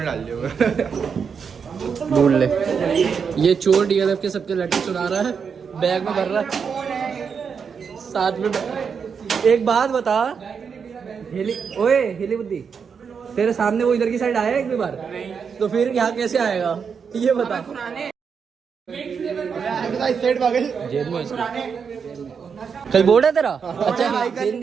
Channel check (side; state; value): left; quieter; 6.3 dB